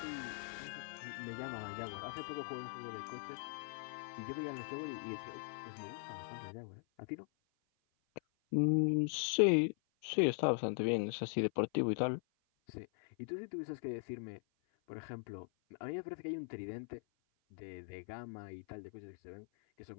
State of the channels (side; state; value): right; silent; 51 dB below the other